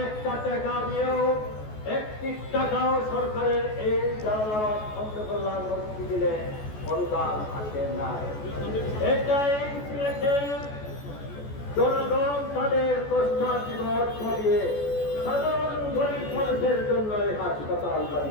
একটা টাকা দিয়েও 1 টাকাও সরকারের এই জালালাবাদ অন্ধ কল্যাণ হসপিটালে অনুদান আসে না। এটাই সিলেটের জনগণ তাদের কষ্টার্জিত অর্থ দিয়ে সাধারণ গরিব মানুষের জন্য এই হাসপাতাল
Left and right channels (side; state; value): right; late; 14 ms